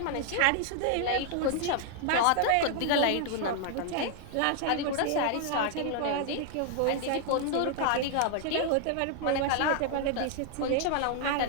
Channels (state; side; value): different; both; correlation 0.00